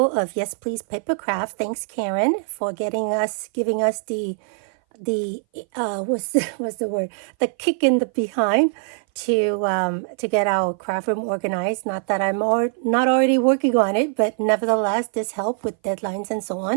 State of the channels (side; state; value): left; silent; 59 dB below the other